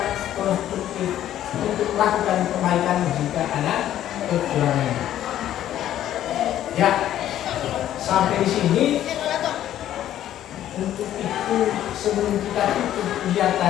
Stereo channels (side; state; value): right; quieter; 12.0 dB